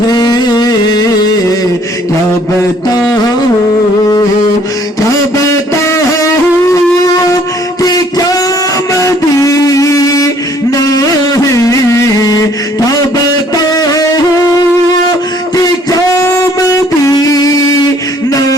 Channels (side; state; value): both; normal; correlation 0.60